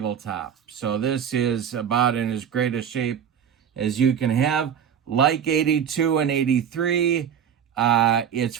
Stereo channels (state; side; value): quieter; left; 8.3 dB